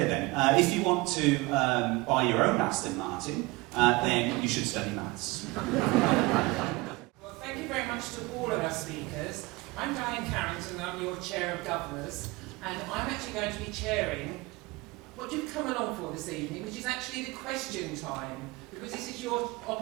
then. If you want to buy your own Aston Martin, then you should study maths. Well, thank you very much to all of our speakers. I'm Diane Carrington, and I'm your Chair of Governors, and I'm actually going to be chairing what you've come along for this evening, which is actually the question time, because this is your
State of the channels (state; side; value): quieter; left; 23.2 dB